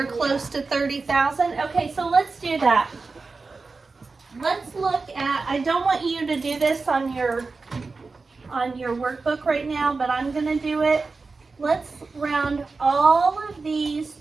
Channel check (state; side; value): quieter; left; 4.1 dB